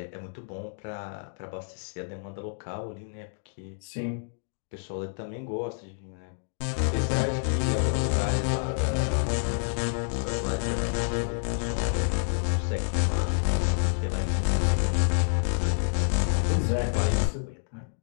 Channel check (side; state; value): right; silent; digital silence